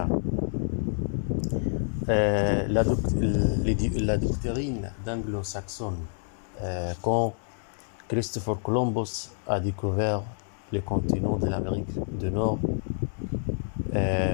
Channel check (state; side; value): silent; right; digital silence